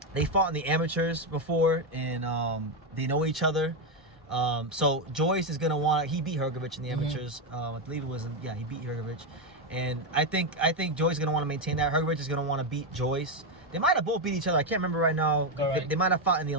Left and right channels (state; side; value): normal; both; correlation 0.07